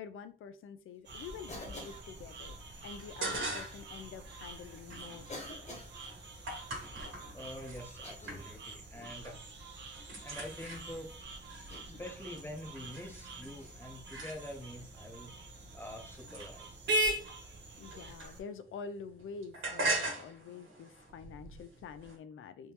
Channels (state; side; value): normal; both; correlation 0.05